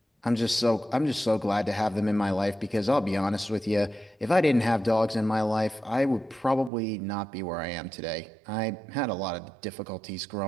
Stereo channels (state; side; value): drops out; left; at 6.7 s